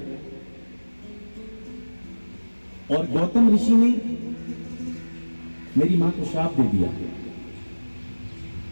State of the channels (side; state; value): both; inverted; correlation -1.00